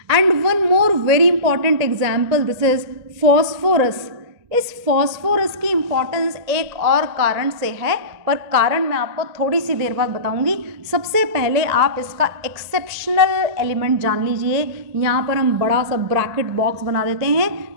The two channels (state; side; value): late; left; 1.9 ms